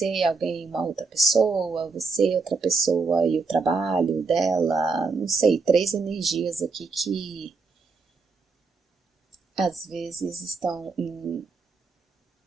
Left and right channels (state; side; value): quieter; left; 4.3 dB